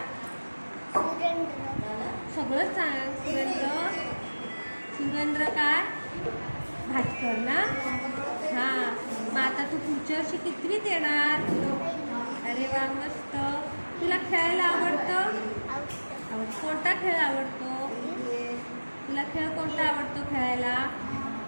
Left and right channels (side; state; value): both; inverted; correlation -1.00